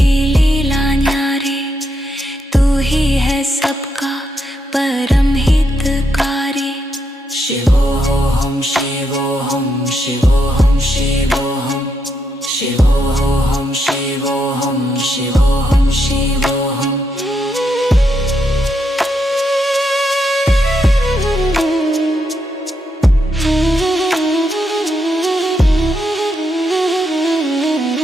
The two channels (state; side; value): normal; both; correlation 0.80